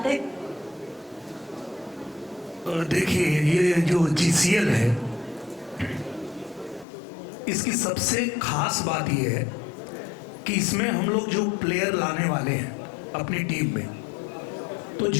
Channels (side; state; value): right; drops out; at 6.9 s